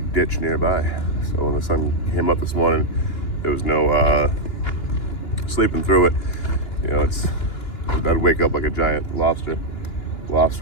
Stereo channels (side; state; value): right; late; 2.9 ms